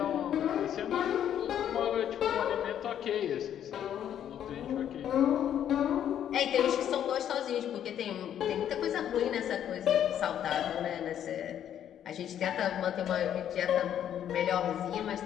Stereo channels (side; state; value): right; quieter; 10.0 dB